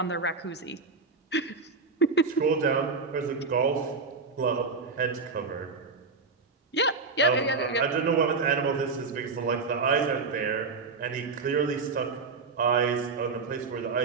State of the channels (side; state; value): left; quieter; 4.4 dB